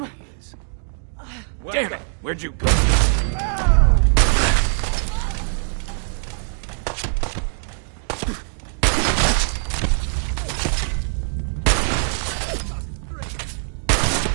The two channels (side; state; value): left; silent; 64 dB below the other